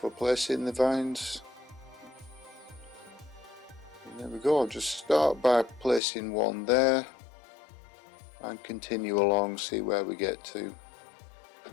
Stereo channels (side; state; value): right; drops out; at 6.0 s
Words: placing the vines. And there we go, I'll just start by placing one there and continue along, see where we get to,